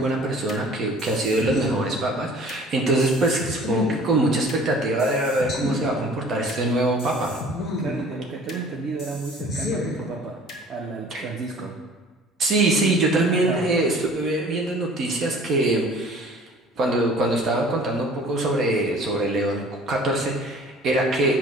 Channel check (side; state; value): both; normal; correlation 0.49